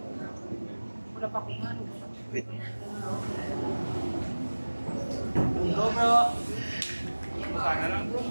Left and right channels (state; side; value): inverted; both; correlation -1.00